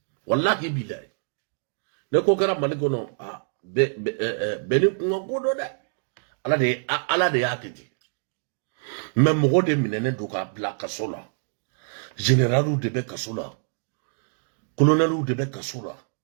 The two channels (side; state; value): left; silent; digital silence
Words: Wallahi bilay. Ne kokara manigono a beni ngogodo da. Ala de yakiti. Mais mogo de minene doka bla kasola. Général de be kasola. Colonel de be kasola.